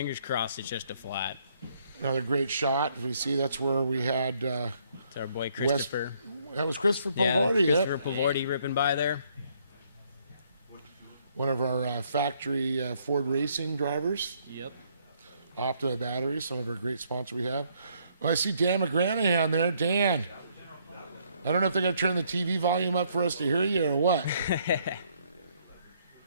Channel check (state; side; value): inverted; both; correlation -0.68